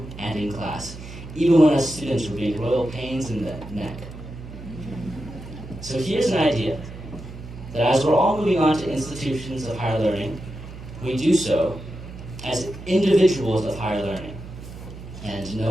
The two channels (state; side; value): noise; right; hum, 13 dB below the sound